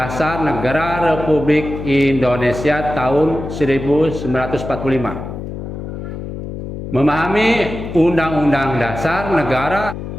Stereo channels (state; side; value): noise; left; hum, 8 dB below the sound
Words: Negara Republik Indonesia tahun 1945. Memahami Undang-Undang Dasar Negara,